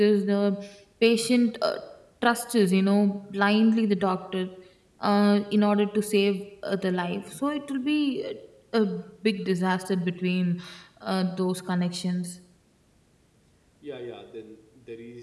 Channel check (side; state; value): both; identical; correlation 1.00